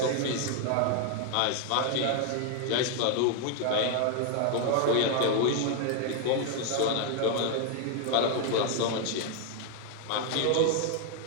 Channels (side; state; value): both; different; correlation 0.00